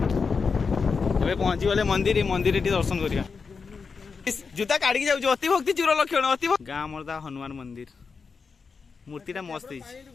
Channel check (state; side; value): quieter; right; 5.1 dB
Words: ए पहुंची गले मंदिर मंदिर दर्शन करिया जूता काढ़ी जाऊ अति भक्ति चूर लक्षण अति गाँ मरदा हनुमान मंदिर मूर्तिटा मस्त